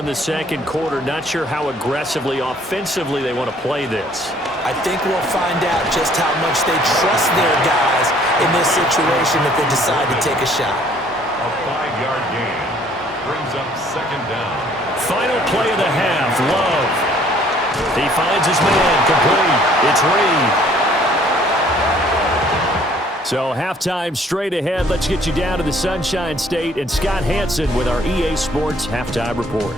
the second quarter, not sure how aggressively, offensively they want to play this. I think we'll find out just how much they trust their guys in this situation if they decide to take a shot. A 5-yard gain brings up 2nd down. Final play of the half, Love. He finds his man, complete. It's Reed. So halftime straight ahead. Let's get you down to the Sunshine State and Scott Hansen with our EA Sports Halftime Report.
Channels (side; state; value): both; normal; correlation 0.59